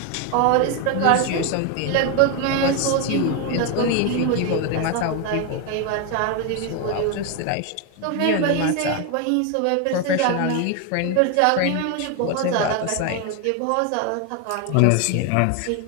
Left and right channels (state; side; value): different; both; correlation 0.01